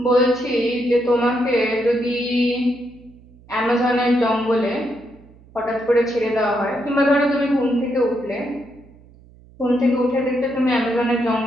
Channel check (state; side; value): noise; right; hum, 25 dB below the sound